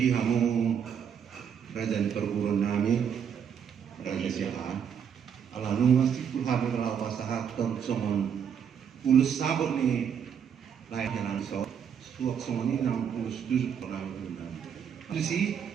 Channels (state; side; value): quieter; left; 7.8 dB